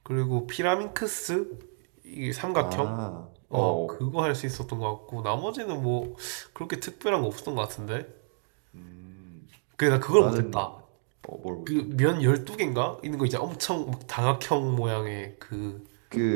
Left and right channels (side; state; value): left; silent; digital silence